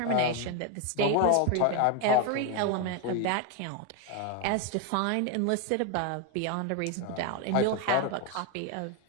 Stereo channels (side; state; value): both; different; correlation 0.01